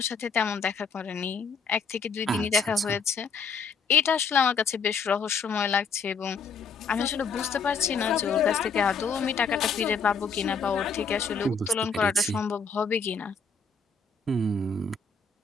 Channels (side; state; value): right; quieter; 5.0 dB